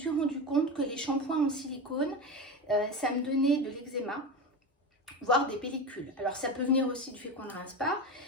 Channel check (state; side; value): normal; both; correlation 0.22